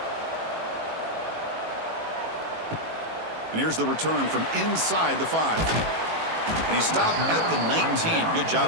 And here's the return from inside the 5. And he stopped at the 19. Good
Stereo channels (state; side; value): late; left; 18 ms